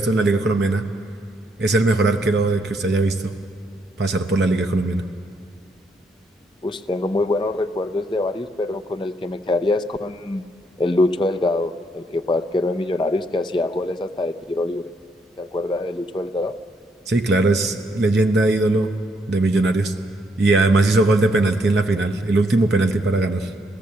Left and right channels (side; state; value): both; normal; correlation 0.73